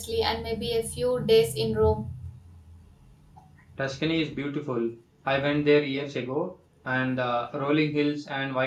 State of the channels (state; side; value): identical; both; correlation 1.00